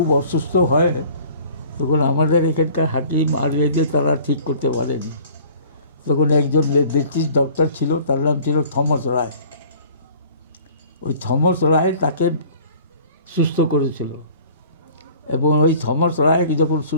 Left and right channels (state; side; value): inverted; both; correlation -0.49